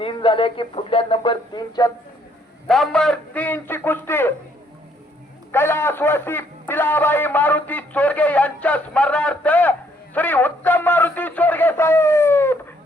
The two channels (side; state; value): both; normal; correlation 0.68